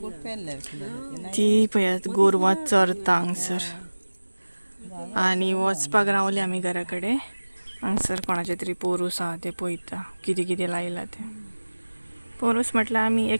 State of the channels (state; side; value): inverted; both; correlation -1.00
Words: ती पळयात गोरवां चरता हांगसर आनी वचपाक रावले आमी घरा कडेन हांगसर कोणाचे तरी पोरूस आहा ते पळयता कितें कितें लायला ते पोरूस म्हटल्यार आमी